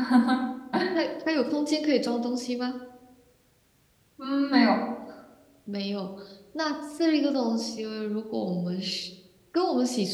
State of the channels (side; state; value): both; identical; correlation 1.00